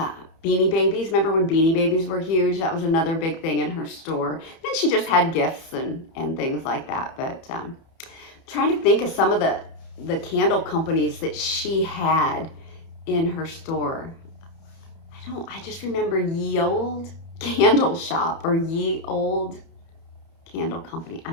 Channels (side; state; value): right; late; 30 ms